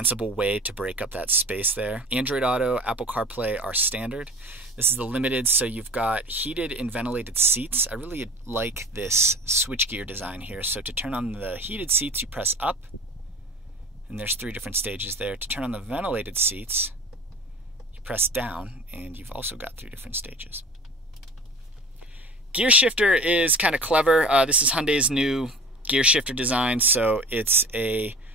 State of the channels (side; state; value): both; normal; correlation 0.40